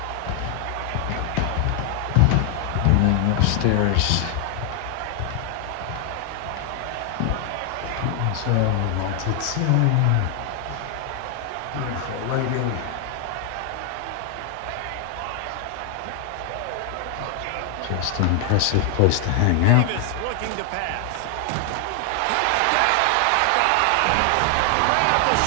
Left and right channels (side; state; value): both; different; correlation 0.00